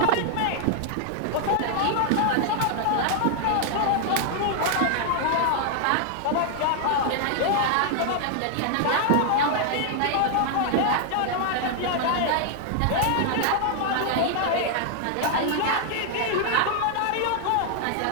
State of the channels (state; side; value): different; both; correlation 0.00